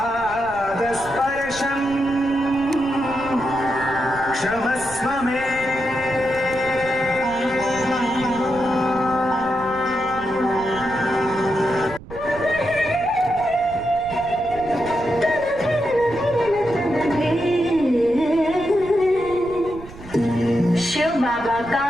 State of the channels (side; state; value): right; noise; rumble, 16 dB below the sound